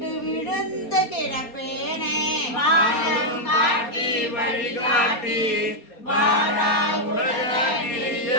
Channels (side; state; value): right; late; 4.2 ms